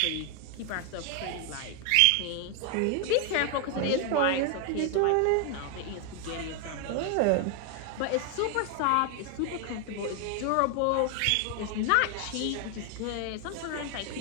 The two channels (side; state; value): both; different; correlation 0.00